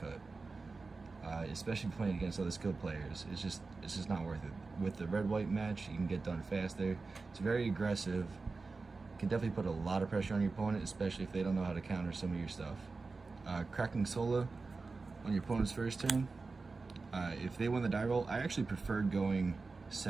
cut. Especially playing against other skilled players, it's just not worth it. With the red-white match, you can get done faster. It's very aggressive. Can definitely put a lot of pressure on your opponent, especially if they don't know how to counter some of your stuff. Cracking Sola on your opponent's first turn. If they win the die roll, I actually preferred going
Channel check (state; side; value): quieter; left; 4.0 dB